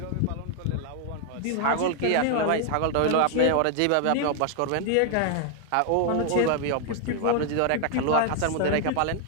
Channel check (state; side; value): different; both; correlation 0.00